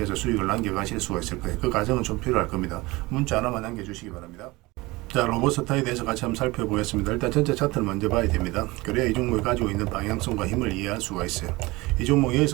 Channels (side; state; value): left; quieter; 21.8 dB